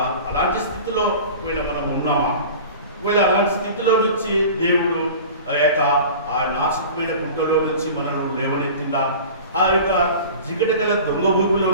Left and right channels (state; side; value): inverted; both; correlation -0.38